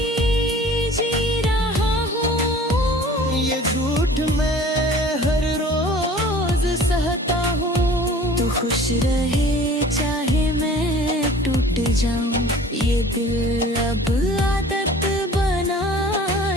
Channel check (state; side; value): normal; both; correlation 0.46